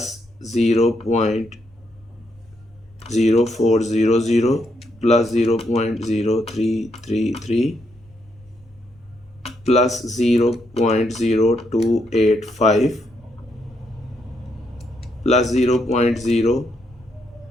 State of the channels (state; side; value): normal; both; correlation 0.77